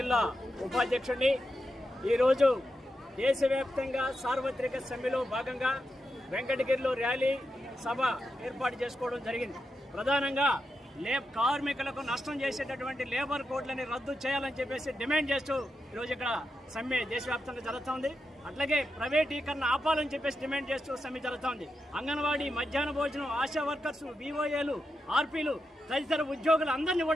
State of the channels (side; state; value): both; normal; correlation 0.87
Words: ఉపాధ్యక్షుడిని. ఈరోజు దేశవ్యాప్తంగా సార్వత్రిక సమ్మెలో భాగంగా వెంకటగిరిలో ర్యాలీ సభ ఏర్పాటు చేసుకోవడం జరిగింది. ప్రధానంగా కార్మికులకు నష్టం చేసేటటువంటి లేబర్ కోడ్లని రద్దు చేయాలని చెప్పేసి డిమాండ్ చేస్తూ ఈరోజు ఇక్కడ సమ్మె దేశవ్యాప్తంగా జరుగుతోంది. అట్లాగే ప్రైవేటీకరణ ఆపాలని చెప్పేసి డిమాండ్ చేస్తూ సమ్మె జరుగుతోంది. అంగన్వాడీ, మధ్యాహ్న భోజనం, ఆశా వర్కర్స్, వివోఏలు, ఆర్పీలు తదితర ఉద్యోగులు అందరినీ